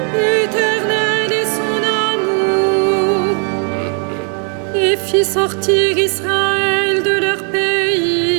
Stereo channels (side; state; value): left; quieter; 39.9 dB